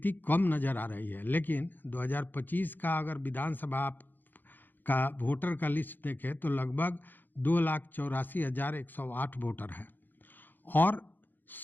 कम नज़र आ रही है। लेकिन 2025 का अगर विधानसभा का वोटर का लिस्ट देखें तो लगभग 2,84,108 वोटर हैं और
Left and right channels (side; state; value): right; late; 0.089 ms